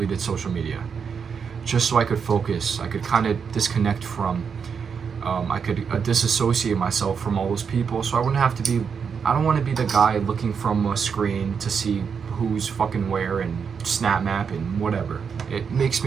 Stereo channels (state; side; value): quieter; left; 6.4 dB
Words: social media, just so I could focus. I could kind of disconnect from, I could disassociate myself from all those people, so I wouldn't have to be, I don't want to be the guy looking from a screen to see who's fucking where and snap map and whatever. It makes